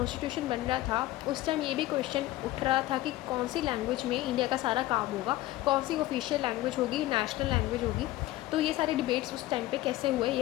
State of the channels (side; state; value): right; quieter; 16.6 dB